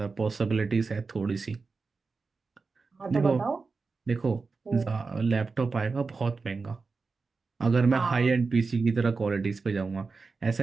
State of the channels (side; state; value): left; quieter; 4.4 dB